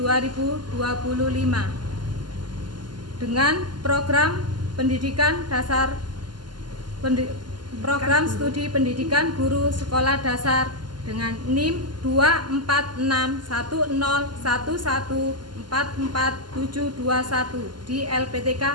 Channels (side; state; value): left; late; 0.71 ms